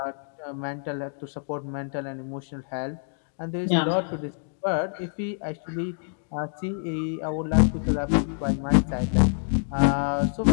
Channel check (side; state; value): right; silent; 61 dB below the other